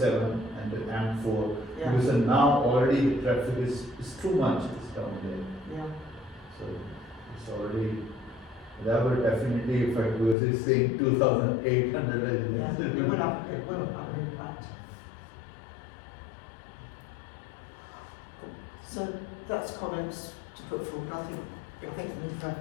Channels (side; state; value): right; drops out; at 10.4 s